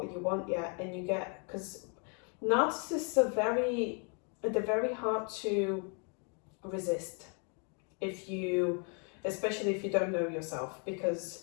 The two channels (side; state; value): right; quieter; 38.4 dB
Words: you want yet, and because narcissists they're very hard to resist especially if you don't know yourself,